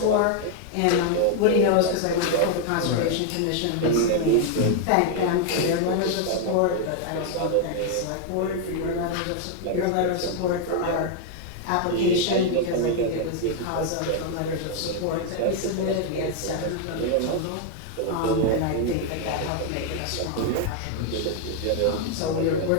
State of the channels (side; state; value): both; different; correlation 0.00